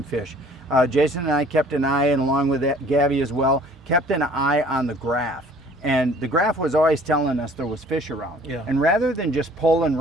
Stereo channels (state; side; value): normal; both; correlation 0.53